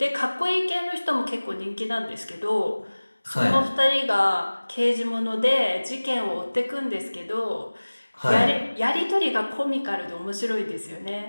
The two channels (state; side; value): inverted; both; correlation -1.00